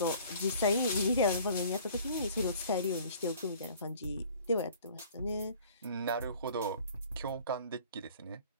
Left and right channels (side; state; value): both; inverted; correlation -0.50